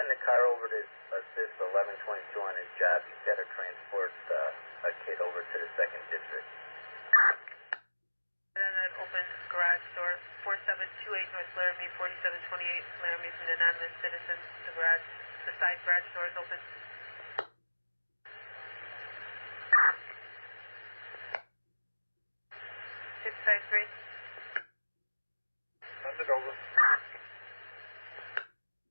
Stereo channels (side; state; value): both; inverted; correlation -1.00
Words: the car over to assist 1122 on his job? He's got to transport a kid over to the 2nd District. And then that open garage door, 4728 North Laramie, 4728 Laramie from the anonymous citizen. The side garage door is open. 653. Send it over.